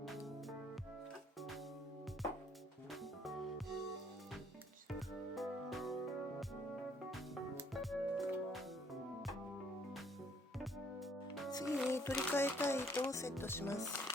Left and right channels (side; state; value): both; normal; correlation 0.64